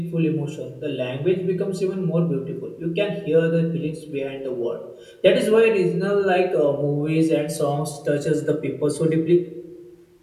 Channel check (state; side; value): identical; both; correlation 1.00